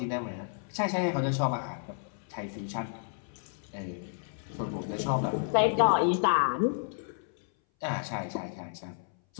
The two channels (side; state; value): right; silent; 57 dB below the other